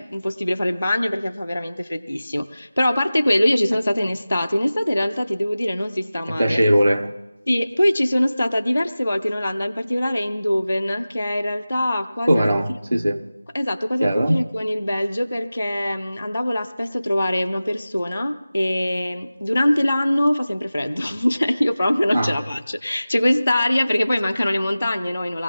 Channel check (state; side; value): inverted; both; correlation -0.96